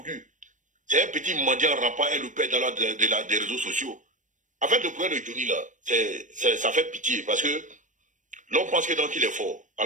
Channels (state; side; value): late; left; 0.37 ms